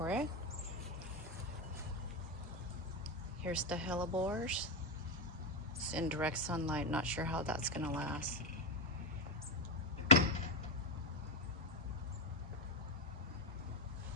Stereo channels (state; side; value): normal; both; correlation 0.06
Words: it. Here's the hellebores. It's in direct sunlight, not sure how that's gonna last.